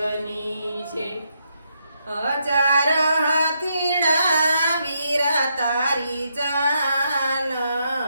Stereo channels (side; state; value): both; inverted; correlation -0.78